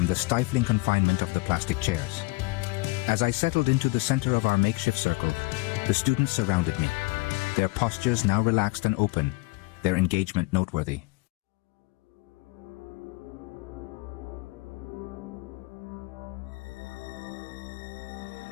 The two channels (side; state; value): right; quieter; 24.3 dB